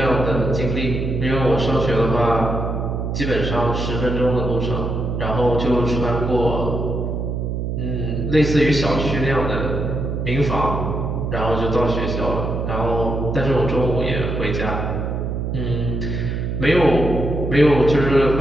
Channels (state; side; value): noise; right; hum, 2 dB below the sound